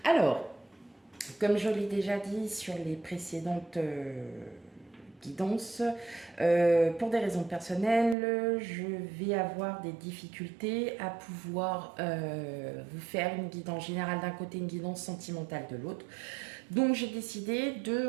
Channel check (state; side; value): drops out; left; at 8.2 s